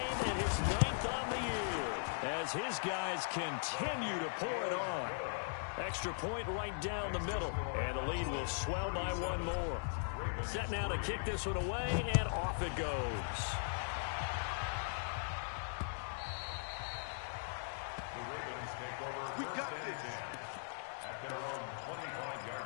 and his 9th on the year, as his guys continue to pour it on. Extra point right down the middle, and the lead will swell by 1 more. Set now to kick this one away, and off it goes. The Ravens take over We got 1st and this. 10 at their own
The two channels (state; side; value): silent; right; digital silence